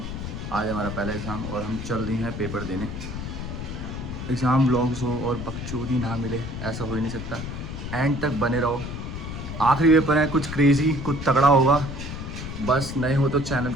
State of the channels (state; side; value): noise; left; rumble, 7 dB below the sound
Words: आज हमारा पहला एग्ज़ाम और हम चल रहे हैं पेपर देने। एग्ज़ाम व्लॉग्स हो और बकचोदी ना मिले, ऐसा हो ही नहीं सकता। एंड तक बने रहो, आखिरी पेपर है, कुछ क्रेज़ी, कुछ तगड़ा होगा। बस नए हो तो चैनल